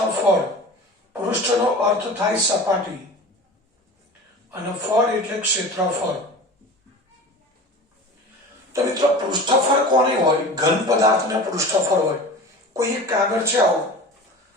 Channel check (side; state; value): both; normal; correlation 0.36